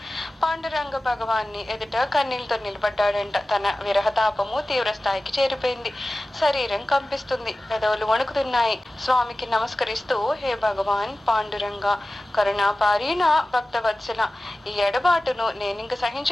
పాండురంగ భగవాన్ని ఎదుట కన్నీళ్లతో నిలబడ్డాడంట. తన విరహతాపము తీవ్ర స్థాయికి చేరిపోయింది. శరీరం కంపిస్తుంది, పెదవులు వణుకుతున్నాయి. స్వామికి నమస్కరిస్తూ, హే భగవాన్ పాండురంగ, కరుణాపారీణ భక్తవత్సల, ఈ ఎడబాటును నేనింక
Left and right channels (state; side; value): normal; both; correlation 0.96